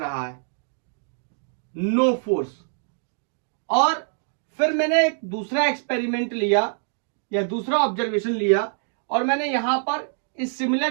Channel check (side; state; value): left; silent; 62 dB below the other